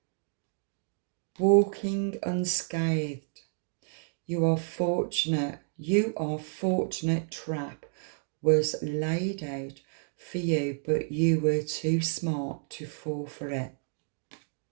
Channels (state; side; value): silent; left; digital silence